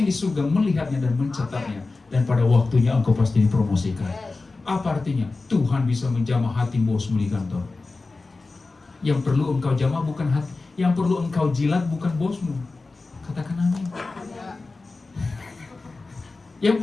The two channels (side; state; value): right; quieter; 3.6 dB